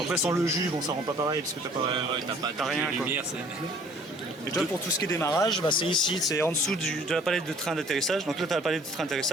Après, sans le jus, bon, ça rend pas pareil parce que t'as pas. Ouais, t'as rien, de quoi. lumière, c'est... Et toi, pour tout ce qui est démarrage, bah, c'est ici, c'est en dessous de la palette de train d'atterrissage. Donc là, tu as la palette de train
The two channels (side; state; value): both; normal; correlation 0.55